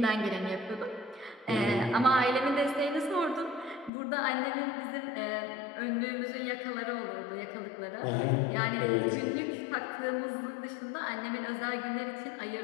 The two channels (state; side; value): drops out; right; at 3.9 s